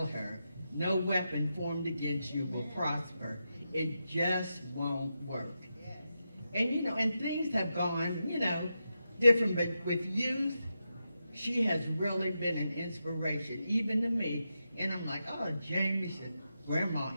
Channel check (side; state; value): both; inverted; correlation -0.88